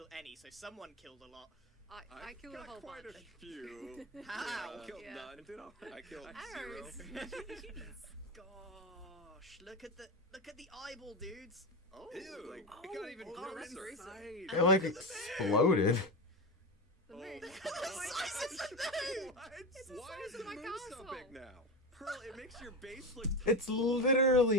any, so someone killed a lot. I killed a whole quite bunch. a few. How? I killed none. I killed 0. Arrows. Gosh, look at the eyeball, dudes. Oh, ew, like, it got even oh, closer. that's gruesome. It like exploded. The moon. The size of the moon! What? It's the Why size is of the my moon so castle. big now? Pearl, it makes your base look It's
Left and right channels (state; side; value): normal; both; correlation 0.19